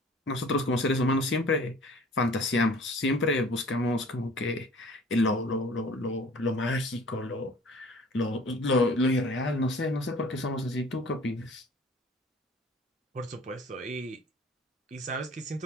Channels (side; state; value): both; normal; correlation 0.49